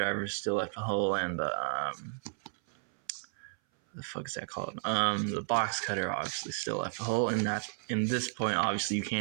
still left a hole, and the fuck is that called? The box cutter obviously still left a hole, and that in this point obviously you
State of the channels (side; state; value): left; silent; 56 dB below the other